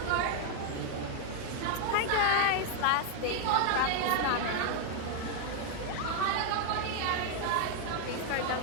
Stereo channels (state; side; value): different; both; correlation 0.00